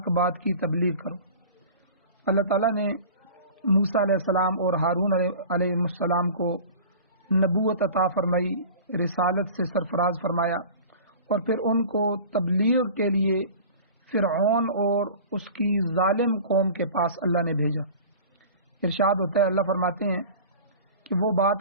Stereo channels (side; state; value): both; inverted; correlation -0.39